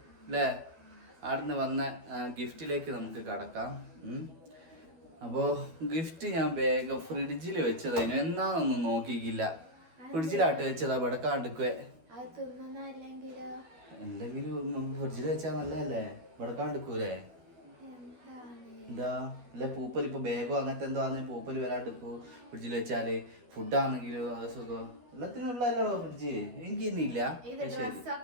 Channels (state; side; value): late; left; 12 ms